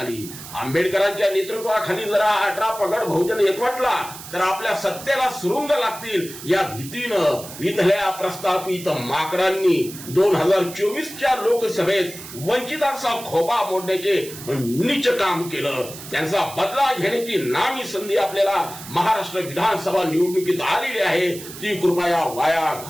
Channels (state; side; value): noise; right; hiss, 13 dB below the sound